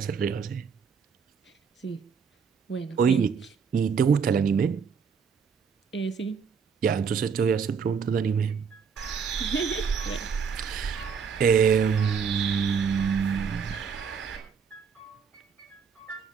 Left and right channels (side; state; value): left; quieter; 6.2 dB